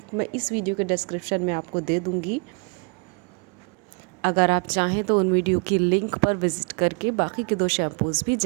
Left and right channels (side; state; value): left; quieter; 36.4 dB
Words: मैं इस वीडियो के डिस्क्रिप्शन में आपको दे दूँगी। अगर आप चाहें तो उन वीडियो की लिंक पर विज़िट करके बाकी के 2 शैम्पूज़ भी